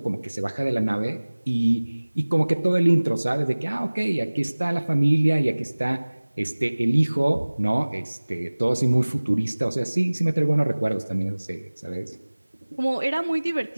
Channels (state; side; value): inverted; both; correlation -1.00